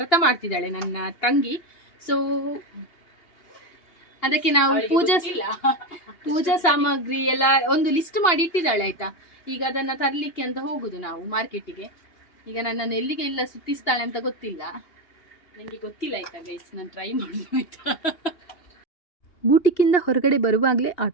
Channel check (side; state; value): right; late; 2.8 ms